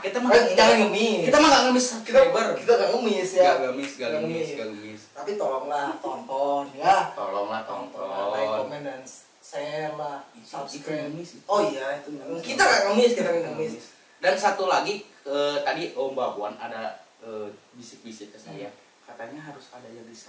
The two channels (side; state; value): both; identical; correlation 1.00